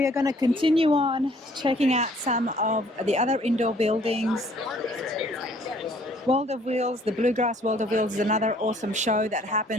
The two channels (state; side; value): normal; both; correlation 0.59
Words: are going to continue on checking out some of the other indoor buildings. World of Wheels, the Bluegrass World of Wheels is another awesome show that